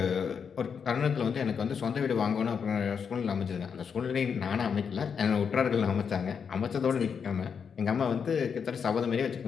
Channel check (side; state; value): right; quieter; 6.6 dB